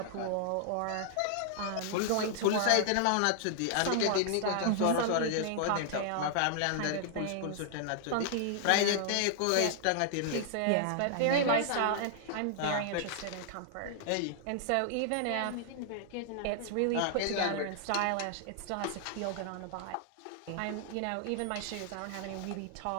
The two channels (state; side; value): different; both; correlation 0.00